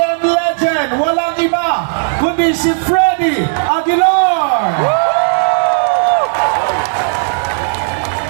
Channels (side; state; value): left; silent; digital silence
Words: legend, walang iba kundi si Freddy Aguilar.